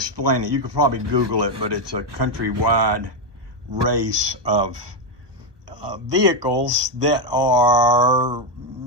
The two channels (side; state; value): left; late; 1.3 ms